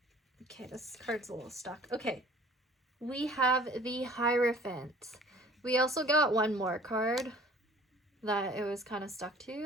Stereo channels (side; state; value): both; normal; correlation 0.50